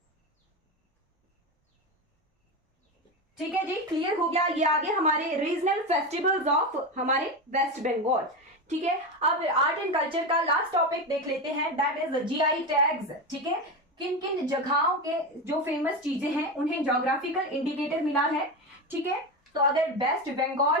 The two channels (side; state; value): both; normal; correlation 0.18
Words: ठीक है जी, क्लियर हो गया। ये आगे हमारे रीजनल फेस्टिवल्स ऑफ हमारे वेस्ट बंगाल। ठीक है, अब आर्ट एंड कल्चर का लास्ट टॉपिक देख लेते हैं, दैट इज जीआई टैग्स। ठीक है, किन किन जगहों के जो फेमस चीजें हैं उन्हें ज्योग्राफिकल इंडिकेटर मिला है। ठीक है, तो अगर वेस्ट